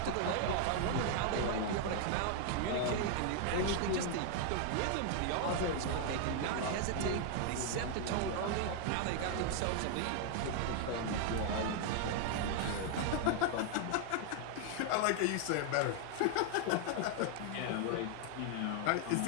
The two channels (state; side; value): different; both; correlation 0.00